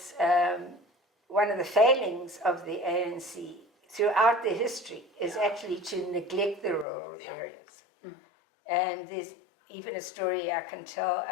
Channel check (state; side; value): drops out; right; at 6.9 s